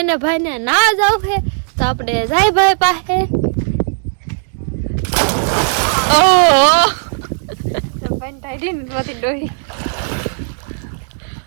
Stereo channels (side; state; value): left; silent; digital silence